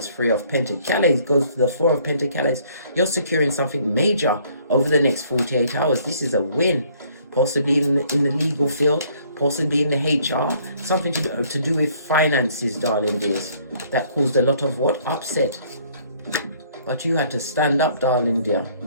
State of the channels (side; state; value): both; inverted; correlation -0.61